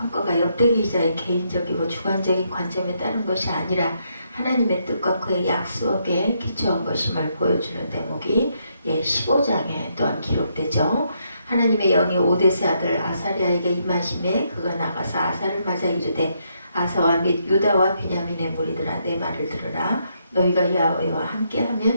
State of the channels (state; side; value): inverted; both; correlation -0.76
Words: 역대기 기자의 개인적이고 주관적인 관점에 따른 것이 아니라 하나님의 뜻과 그의 약속에 기초한 것임을 보여주는 대목이 15장에 또한 기록되죠. 하나님의 영이 오데스의 아들 아사랴에게 임하심에 그가 나가서 아사를 맞아 이르되 아사와 및 유다와 베냐민의 무리들아 내 말을 들으라. 너희가 야훼와